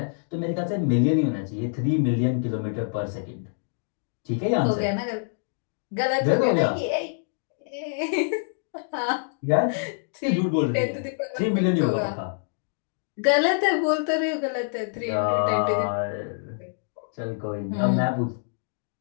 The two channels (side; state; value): right; silent; digital silence